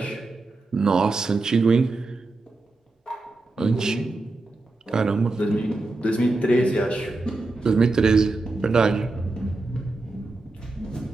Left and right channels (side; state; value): left; quieter; 3.2 dB